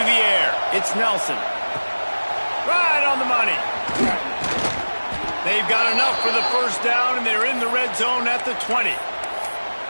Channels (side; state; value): both; inverted; correlation -1.00